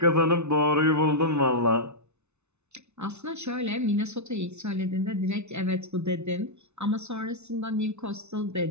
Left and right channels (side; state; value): left; late; 0.81 ms